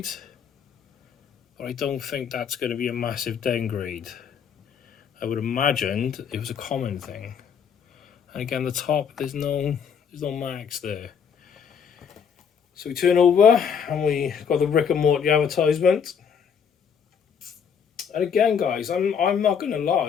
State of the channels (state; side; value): quieter; right; 7.1 dB